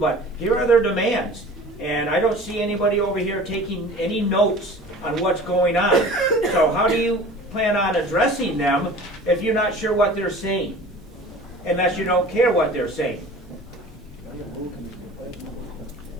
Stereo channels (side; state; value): both; normal; correlation 0.42